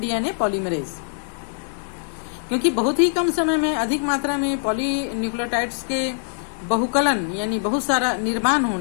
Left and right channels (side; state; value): right; silent; 63 dB below the other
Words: polymerase. क्योंकि बहुत ही कम समय में अधिक मात्रा में पॉलीन्यूक्लियोटाइड्स के बहुकलन यानी बहुत सारा निर्माण